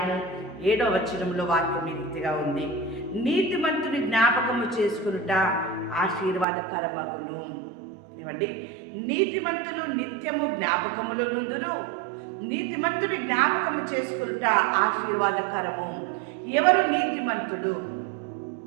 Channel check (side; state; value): left; drops out; at 6.5 s